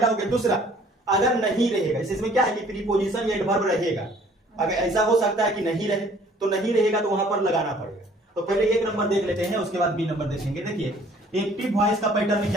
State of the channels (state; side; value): normal; both; correlation 0.56